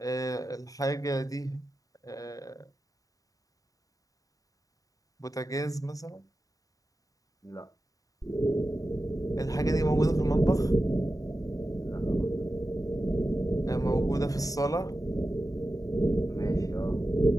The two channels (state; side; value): late; right; 0.17 ms